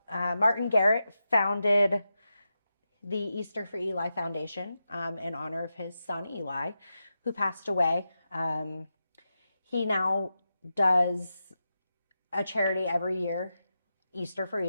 Martin Garrett founded the Easter for Eli Foundation in honor of his son Eli, who passed away. He now does a charity every year, Easter for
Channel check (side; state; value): both; inverted; correlation -0.89